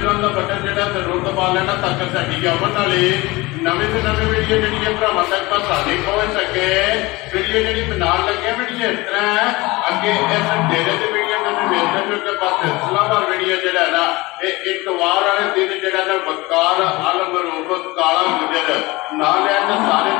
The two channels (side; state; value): right; quieter; 22.1 dB